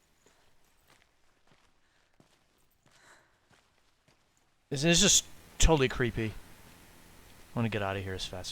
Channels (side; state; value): both; identical; correlation 1.00